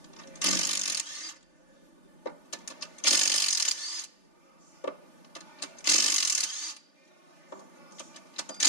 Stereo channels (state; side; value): late; right; 3.4 ms